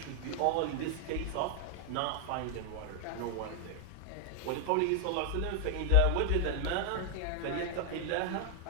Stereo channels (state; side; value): different; both; correlation 0.00